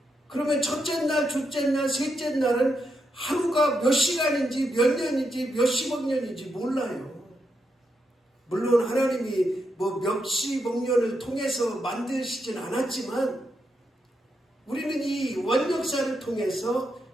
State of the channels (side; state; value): both; normal; correlation 0.83